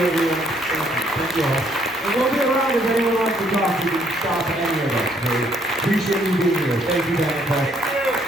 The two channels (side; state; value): both; normal; correlation 0.67